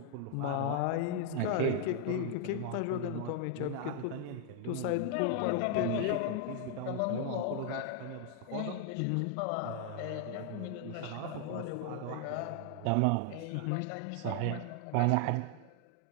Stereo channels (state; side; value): different; both; correlation 0.00